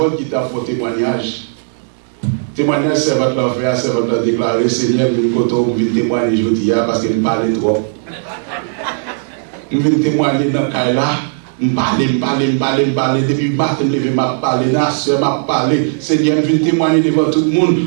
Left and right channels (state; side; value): silent; left; digital silence